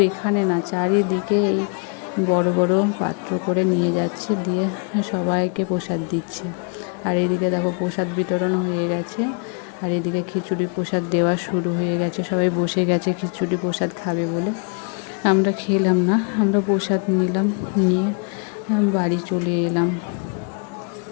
এখানে না, চারিদিকে এই বড় বড় পাত্র করে নিয়ে যাচ্ছে, দিয়ে সবাইকে প্রসাদ দিচ্ছে। আর এদিকে দেখো প্রসাদ বিতরণ হয়ে গেছে, আর এদিকে খিচুড়ি প্রসাদ দেওয়া শুরু হয়ে গেছে। সবাই বসে গেছে খিচুড়ি প্রসাদ খাবে বলে। আমরা খেলাম না, আমরা প্রসাদ নিলাম, নিয়ে বাড়ি চলে এলাম।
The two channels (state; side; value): quieter; right; 39.6 dB